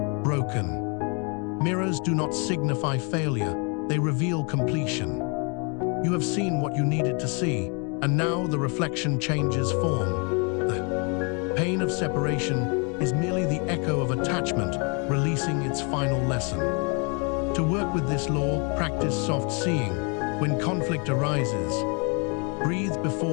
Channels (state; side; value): quieter; right; 34.7 dB